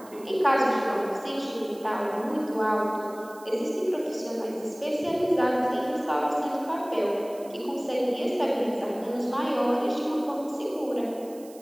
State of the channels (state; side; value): noise; right; hiss, 22 dB below the sound